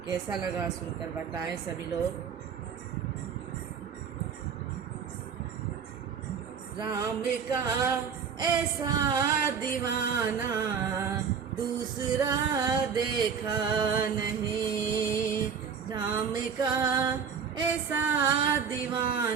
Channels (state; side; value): quieter; left; 6.8 dB